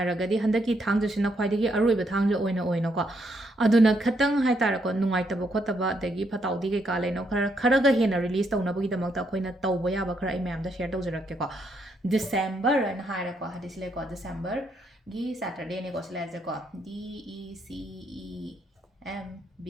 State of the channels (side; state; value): both; normal; correlation 0.75